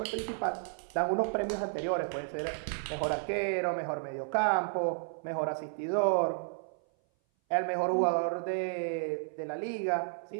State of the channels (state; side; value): silent; left; 56 dB below the other